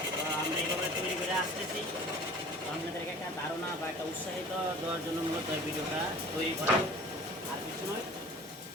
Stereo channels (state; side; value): normal; both; correlation 0.44